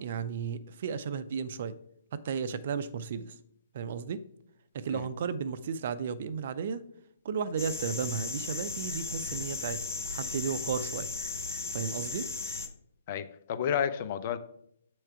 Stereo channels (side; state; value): both; inverted; correlation -0.44